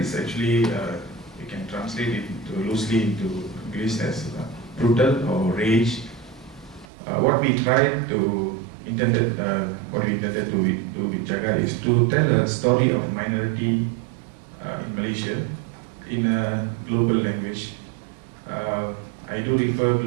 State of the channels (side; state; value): left; drops out; at 6.9 s